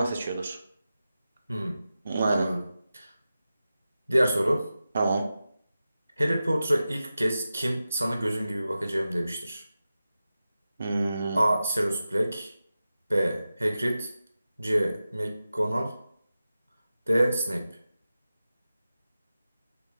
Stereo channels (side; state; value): both; inverted; correlation -0.93